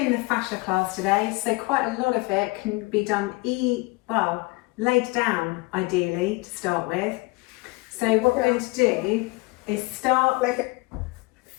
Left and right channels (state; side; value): quieter; right; 24.8 dB